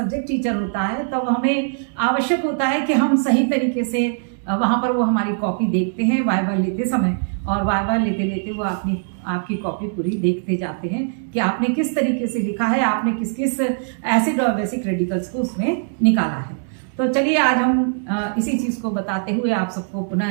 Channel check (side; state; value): left; silent; digital silence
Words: टीचर होता है। तब हमें आवश्यक होता है कि हम सही तरीके से वहाँ पर वो हमारी कॉपी देखते हैं वाइवा लेते समय, और वाइवा लेते लेते वो आपकी कॉपी पूरी देखते जाते हैं कि आपने किस तरीके से लिखा है, आपने किस किस एसिड और बेसिक रेडिकल्स को उसमें निकाला है। तो चलिए आज हम इसी चीज़ को बताते हुए आप सबको